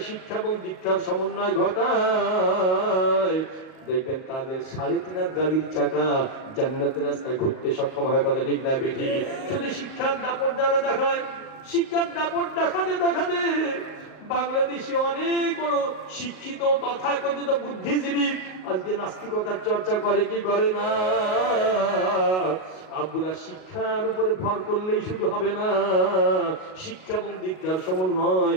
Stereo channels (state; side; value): late; right; 38 ms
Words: শিক্ষা এবং দীক্ষার সমন্বয় ঘটায়, দেখবেন তাদের 3.5 গাড়ির চাকা জান্নাতের রাস্তায় ঘুরতে সক্ষম হয়। কথা ঠিক না বেঠি? শুধু শিক্ষার দাপট যারা দেখায়, শিক্ষার দাপট দেখাতে দেখাতে বাংলাদেশে অনেক বড় শিক্ষিত তথাকথিত বুদ্ধিজীবী আজকে নাস্তিকতার চর্চা করে কি করে না? আব্বুরা, শিক্ষার উপরে ভর করলেই শুধু হবে না, শিক্ষা এবং দীক্ষার সমন্বয়